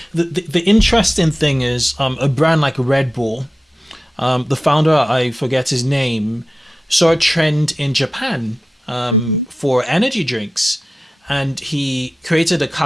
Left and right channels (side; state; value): both; normal; correlation 0.94